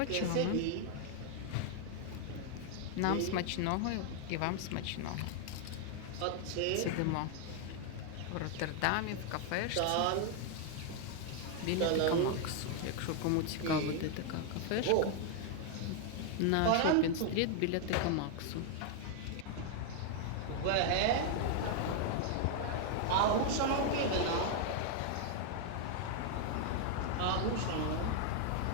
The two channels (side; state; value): both; different; correlation 0.00